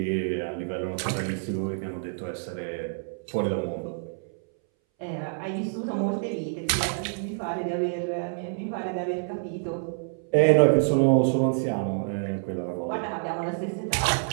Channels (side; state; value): left; silent; 60 dB below the other